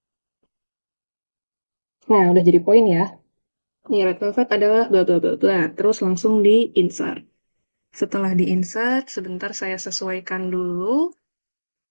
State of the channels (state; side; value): inverted; both; correlation -1.00